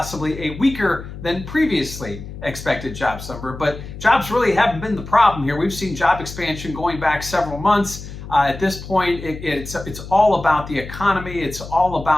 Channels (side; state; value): left; noise; hum, 12 dB below the sound